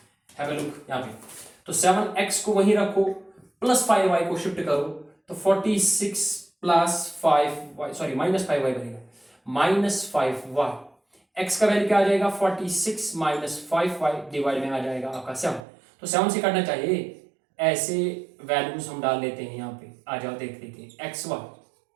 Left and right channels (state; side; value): drops out; left; at 15.6 s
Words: हैव अ लुक यहाँ पे। तो 7x को वहीं रखो, प्लस 5y को शिफ्ट करो, तो 46 प्लस 5y, सॉरी -5y बनेगा, -5y। x का वैल्यू क्या आ जाएगा 46 -5y डिवाइड में आ जाएगा आपका 7। तो 7 से काटना चाहिए, ऐसे वैल्यूज हम डाल लेते हैं यहाँ पे। आ जाओ देख लेते हैं एक्स वाई।